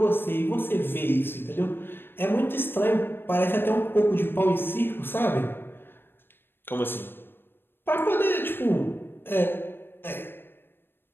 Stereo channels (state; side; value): late; right; 0.10 ms